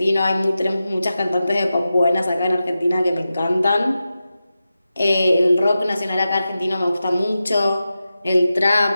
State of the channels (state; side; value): inverted; both; correlation -0.92